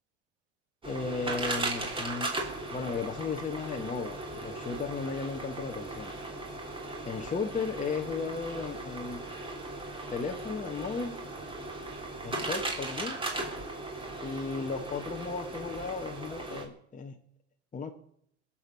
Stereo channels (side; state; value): both; normal; correlation 0.25